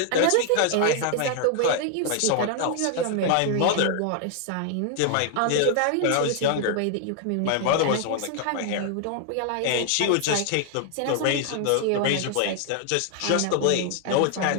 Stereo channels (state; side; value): different; both; correlation 0.00